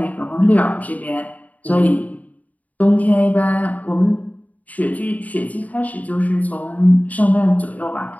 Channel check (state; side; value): late; right; 0.074 ms